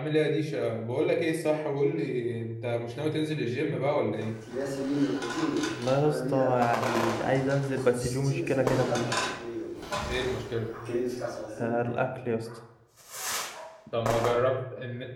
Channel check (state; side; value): identical; both; correlation 1.00